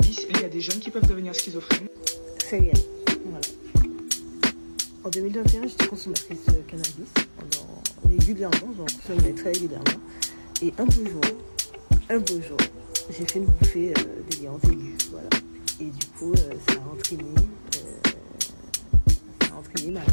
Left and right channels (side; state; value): both; inverted; correlation -1.00